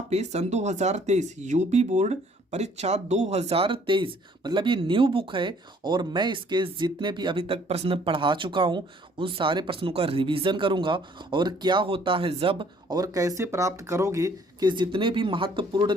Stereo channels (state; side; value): normal; both; correlation 0.60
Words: पे सन 2023 यूपी बोर्ड परीक्षा 2023 मतलब ये न्यू बुक है। और मैं इसके जितने भी अभी तक प्रश्न पढ़ा चुका हूँ उन सारे प्रश्नों का रिवीजन करूँगा, और क्या होता है जब और कैसे प्राप्त करोगे कि जितने भी महत्वपूर्ण